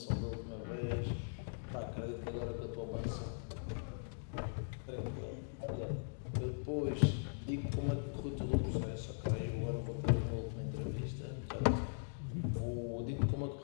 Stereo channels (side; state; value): right; silent; digital silence